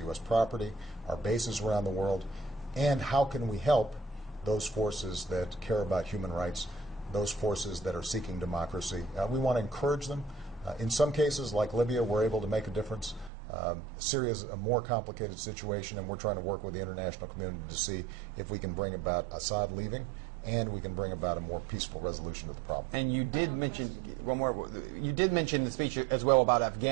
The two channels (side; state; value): left; drops out; at 13.3 s